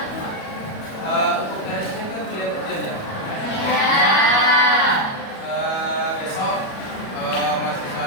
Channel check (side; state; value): right; late; 37 ms